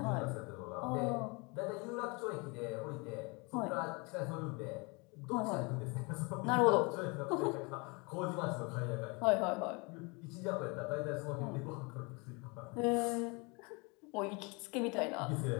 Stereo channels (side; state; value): right; quieter; 29.4 dB